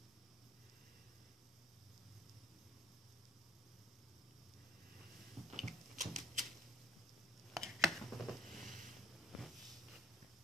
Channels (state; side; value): normal; both; correlation 0.59